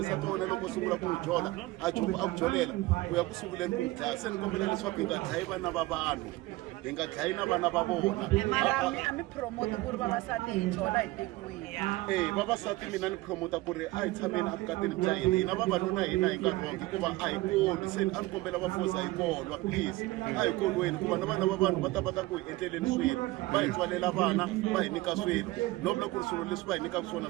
nsati wa wena loko u sungula ku n'wi jola a ku jolela u ya ku sunguleni ku n'wi dlaya se ni kombela leswaku hi nga dlayi vana va vanhu hi nga dlayi na vana va vona a mi promote ku ri vavasati hi jola hi tekiwile vavasati mina ni promota ku ri a hi tshameni avukatini bya hina hina vavanuna hina hi nga rongi hikuva a hi koli se a ni kombela vafosa hi kolwa please a hi kolweni hikuva na vana va vanhu va ta ku hi endleleni swilo va hi tswalela vana va hi nyika swilo no vula ku ri swilo leswi va hi nyikaka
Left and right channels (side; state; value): left; quieter; 19.6 dB